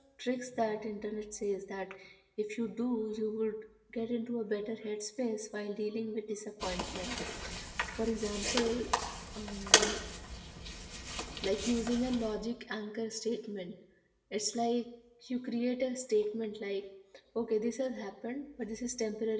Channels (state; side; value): identical; both; correlation 1.00